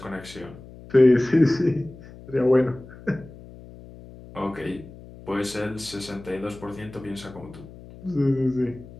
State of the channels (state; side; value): noise; left; hum, 18 dB below the sound